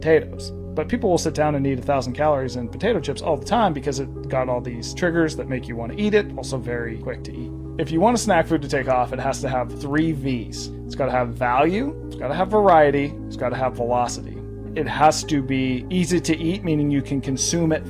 But people will sit down and eat 1,000 calories in potato chips all the time because it got all these triggers that make you want to eat it, also very quick to eat. If you want a snack food to take off, it has to have 3 V's. It's got to have value, it's got to have variety, it's got to have velocity. It has to be easy to eat, meaning you can consume it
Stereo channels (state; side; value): identical; both; correlation 1.00